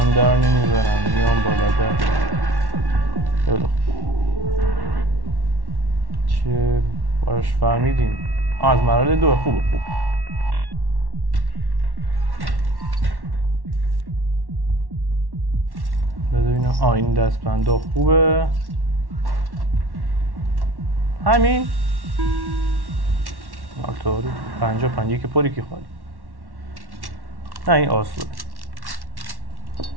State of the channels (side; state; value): left; late; 1.1 ms